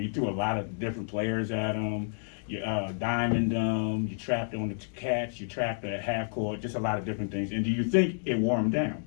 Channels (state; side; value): silent; right; digital silence